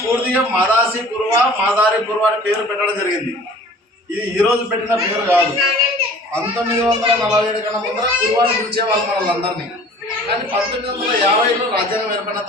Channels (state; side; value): normal; both; correlation 0.47